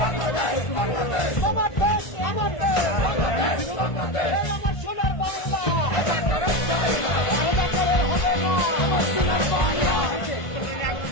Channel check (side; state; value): right; late; 1.5 ms